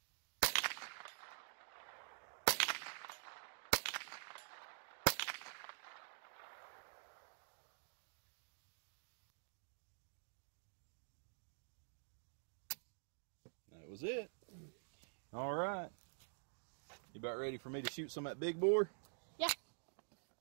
That was it. All right. You about ready for me to shoot some at big bore? Yeah.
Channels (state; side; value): silent; left; digital silence